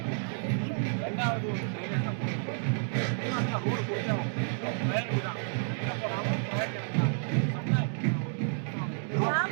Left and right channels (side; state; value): left; silent; digital silence